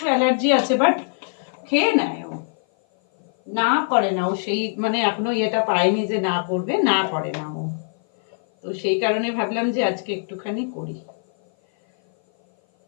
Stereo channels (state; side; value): silent; right; 56 dB below the other